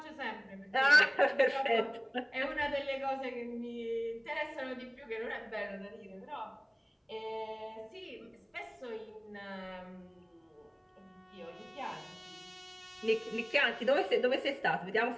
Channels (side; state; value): both; identical; correlation 1.00